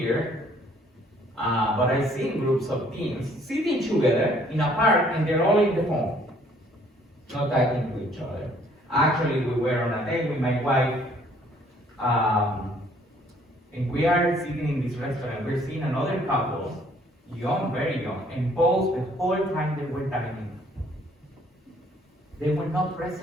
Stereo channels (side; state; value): both; normal; correlation 0.61